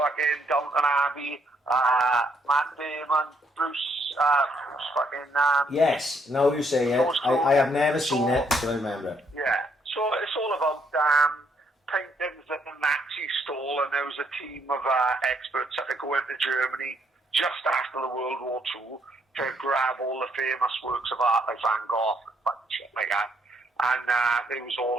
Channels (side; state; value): both; normal; correlation 0.72